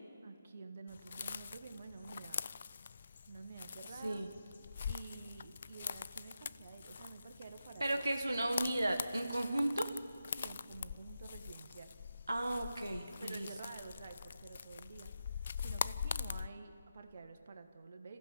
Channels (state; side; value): inverted; both; correlation -0.88